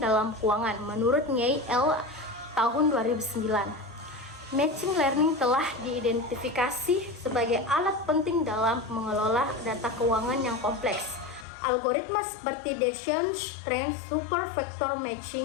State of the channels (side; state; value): right; drops out; at 11.5 s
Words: keuangan. Menurut Nye L. tahun 2009, machine learning telah diidentifikasi sebagai alat penting dalam mengelola data keuangan yang kompleks. Algoritma seperti Bayesian Trend Super Vector